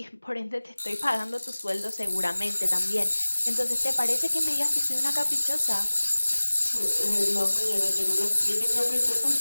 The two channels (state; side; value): inverted; both; correlation -1.00